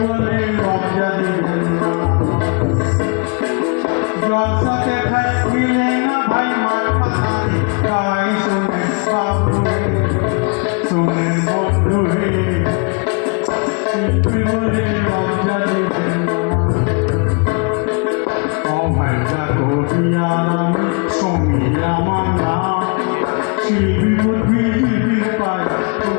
লজ্জা দেবেন না। জলসাতে মিলে না ভাই মার পাতারি গায়। শুনেন বাবু হে, শুনেন বন্ধু হে, শিল্পী বলে লজ্জা দেবেন না। অভয়টা কবিয়ার আমি সমী আমার নাম, শিল্পী পৃথিবীর পায়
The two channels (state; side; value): quieter; right; 35.5 dB